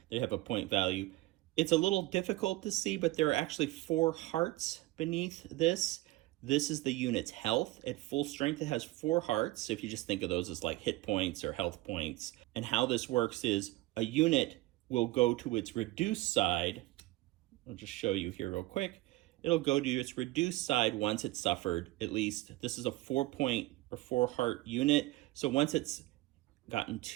they have a point value. It's a little difficult to see, but there are actually 4 hearts beneath this. This is the unit's health. At full strength, it has 4 hearts. So if you just think of those as like hit points or health points. And how this works is a unit will go to its reduced side. I'll just show you here real quick. It'll go to its reduced side once it's suffered, at least. This is a 4-point or 4-heart unit. So once it's gotten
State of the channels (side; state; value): left; quieter; 18.7 dB